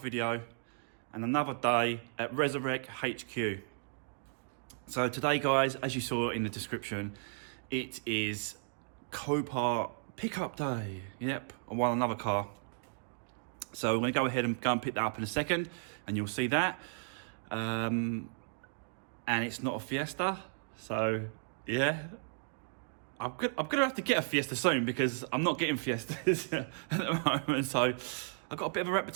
and another day at Resurrect HQ. So today, guys, as you saw in the description, it is Copart pickup day. Yep, I won another car. So we're going to go ahead and pick that up in a second, and you'll see that. And it's not a Fiesta, so yeah. I'm gonna have to get a Fiesta soon because I'm not getting Fiestas at the moment. So I've got a bit of a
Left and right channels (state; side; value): silent; left; digital silence